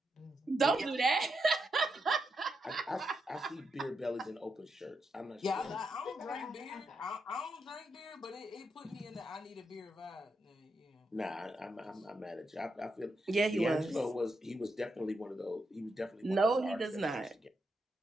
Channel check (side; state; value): both; normal; correlation 0.84